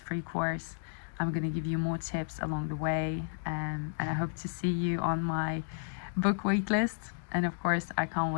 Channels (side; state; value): right; silent; digital silence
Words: free course. I'm going to give you more tips along the way, and I hope to see you on my book waitlist. And of course, I can't